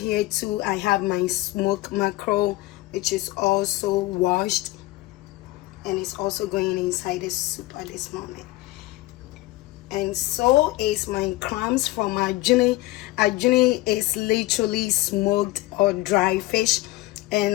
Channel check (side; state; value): right; quieter; 18.8 dB